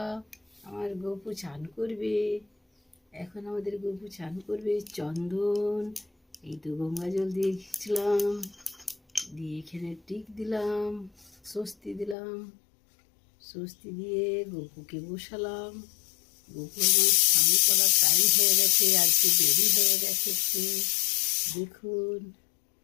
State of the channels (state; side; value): drops out; right; at 12.2 s